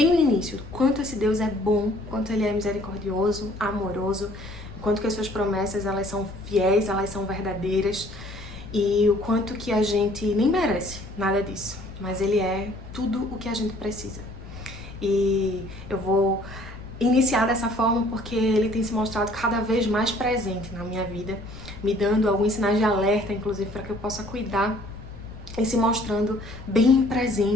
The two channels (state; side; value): noise; left; rumble, 16 dB below the sound